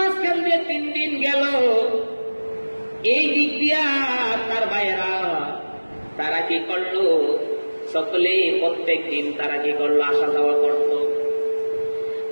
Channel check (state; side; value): inverted; both; correlation -1.00